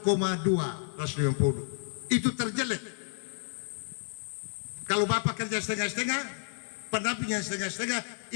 150. Itu terjelek. Kalau Bapak kerja setengah-setengah, pendampingnya setengah-setengah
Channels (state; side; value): silent; right; digital silence